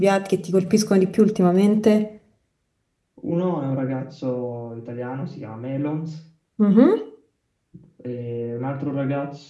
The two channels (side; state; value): both; identical; correlation 1.00